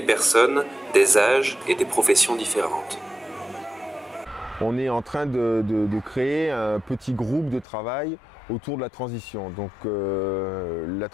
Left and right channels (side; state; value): right; drops out; at 7.7 s